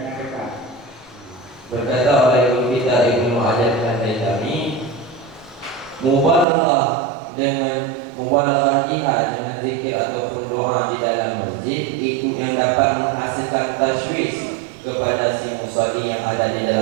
berkata oleh Ibnu kita Ibnu Hajar Al-Haytami, mubalaghah jihad dengan zikir ataupun doa di dalam masjid itu yang dapat menghasilkan tashwish kepada si musalli yang ada di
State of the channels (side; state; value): left; drops out; at 6.5 s